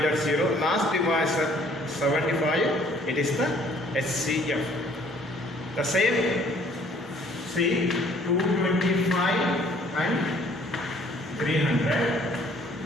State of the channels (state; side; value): normal; both; correlation 0.59